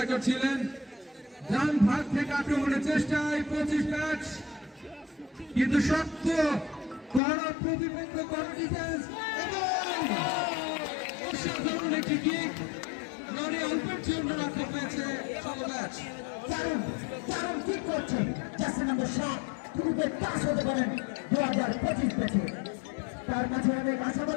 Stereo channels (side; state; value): right; drops out; at 7.2 s